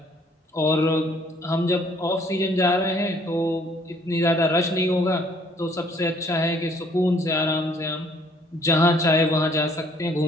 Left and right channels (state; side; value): normal; both; correlation 0.62